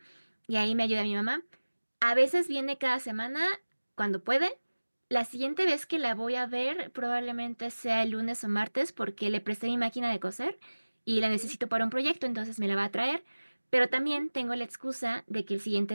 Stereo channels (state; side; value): inverted; both; correlation -1.00